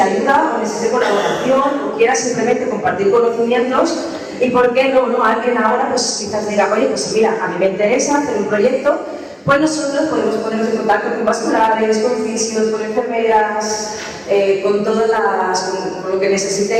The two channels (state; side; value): identical; both; correlation 1.00